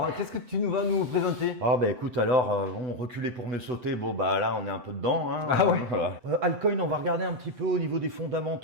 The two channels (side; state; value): left; late; 7.9 ms